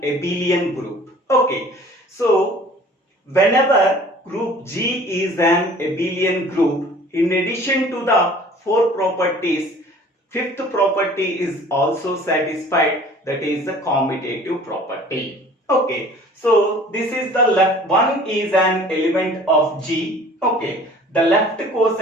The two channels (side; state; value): both; normal; correlation 0.48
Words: abelian group. Okay, so whenever group G is an abelian group, in addition to the 4 properties, fifth property is also satisfied, that is the commutative property. Okay, so this is the left one is an element of G. Okay, the left